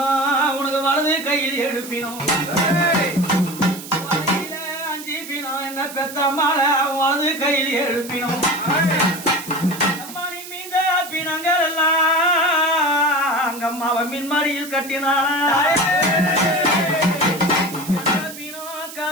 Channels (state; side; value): noise; right; hiss, 13 dB below the sound